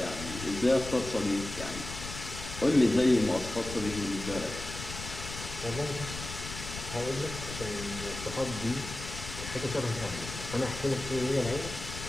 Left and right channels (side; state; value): left; noise; rumble, 9 dB below the sound